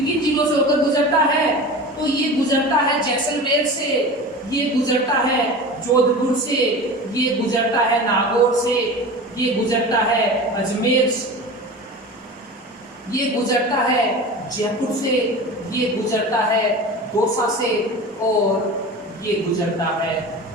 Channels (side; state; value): both; normal; correlation 0.33